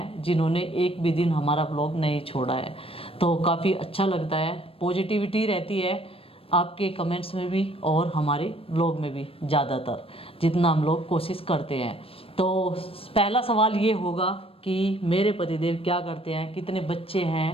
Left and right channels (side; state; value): right; late; 0.27 ms